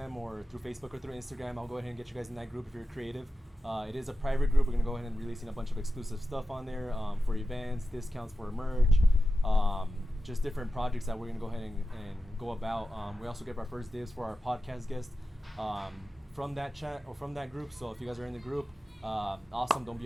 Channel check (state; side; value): normal; both; correlation 0.93